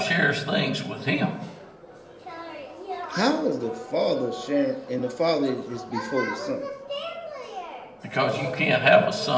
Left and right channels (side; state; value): both; identical; correlation 1.00